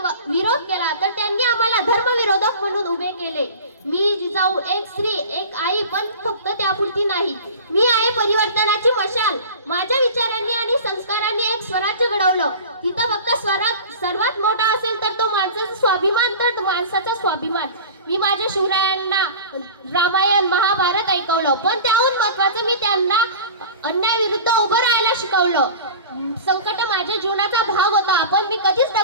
विरोध केला तर त्यांनी आम्हाला धर्मविरोधक म्हणून उभे केले. मी जिजाऊ एक स्त्री, एक आई, पण फक्त त्यापुरती नाही. मी आहे परिवर्तनाची मशाल. माझ्या विचारांनी आणि संस्कारांनी एक स्वराज्य घडवलं. तिथं फक्त स्वराज्य सर्वात मोठा असेल तर तो माणसाचा स्वाभिमान, तर माणसाचा स्वाभिमान. मी माझ्या शिवरायांना रामायण, महाभारत ऐकवलं, पण त्याहून महत्वाचं मी त्यांना अन्यायाविरुद्ध उभं राहायला शिकवलं. संकट माझ्या जीवनाचा भाग होता, पण मी कधीच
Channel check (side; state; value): both; inverted; correlation -0.37